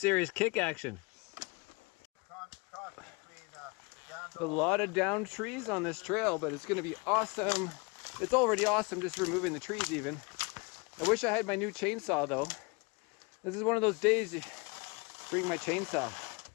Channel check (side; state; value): right; quieter; 28.3 dB